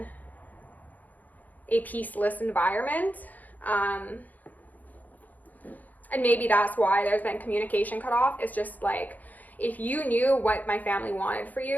a peaceless environment. And maybe that's why there's been communication cut off. It's just like, if you knew what my family wanted for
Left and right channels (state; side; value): late; right; 0.081 ms